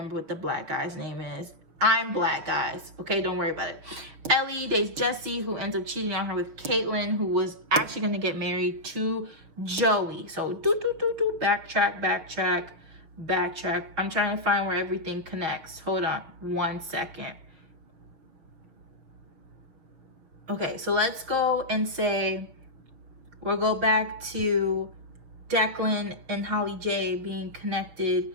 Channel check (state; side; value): late; left; 6.0 ms